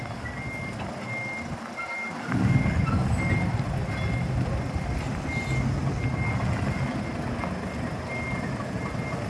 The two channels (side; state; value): both; identical; correlation 1.00